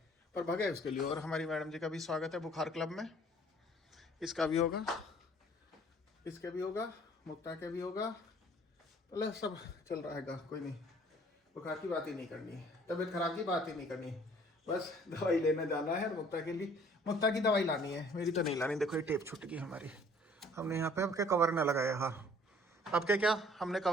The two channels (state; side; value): normal; both; correlation 0.56